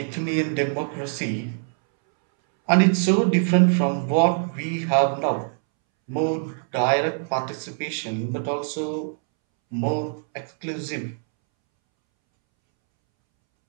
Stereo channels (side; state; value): left; silent; 63 dB below the other